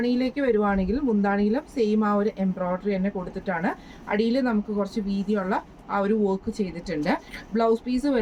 വരുവാണെങ്കിൽ മുന്താണിയിലും സെയിം ആ ഒരു എംബ്രോയിഡറി തന്നെ കൊടുത്തിട്ടാണ്. അടിയിൽ നമുക്ക് കുറച്ച് വീതിയുള്ള ആ ഒരു വർക്ക് ചെയ്തിട്ടുണ്ട്. ബ്ലൗസ് പീസ്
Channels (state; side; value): identical; both; correlation 1.00